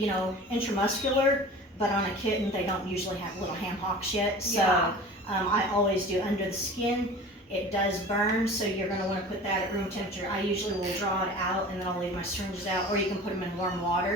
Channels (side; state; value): both; normal; correlation 0.39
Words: but on a kitten, they don't usually have little ham hocks yet. So Yeah. I always do under the skin. It does burn, so you're going to want to put that at room temperature. I usually will draw it out, and then I'll leave my syringes out, or you can put them in warm